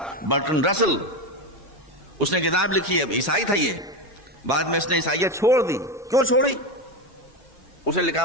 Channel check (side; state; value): both; normal; correlation 0.16